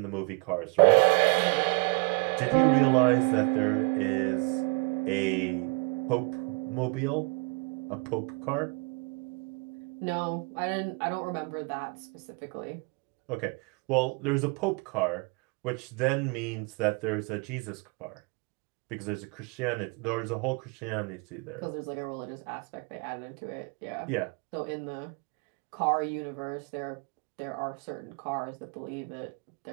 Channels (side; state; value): left; quieter; 30.6 dB